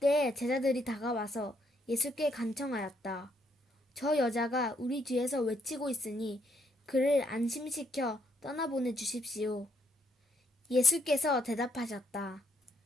제자들이 다가와서 예수께 간청하였다. 저 여자가 우리 뒤에서 외치고 있으니 그를 안심시켜 떠나보내 주십시오. 예수께서 대답하셨다.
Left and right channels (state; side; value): normal; both; correlation 0.73